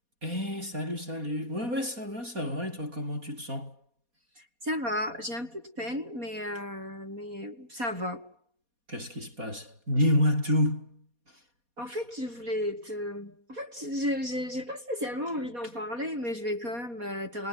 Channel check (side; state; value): left; late; 4.2 ms